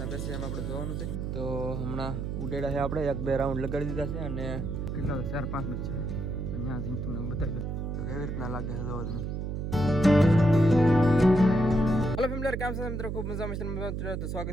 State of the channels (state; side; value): noise; right; hum, 3 dB below the sound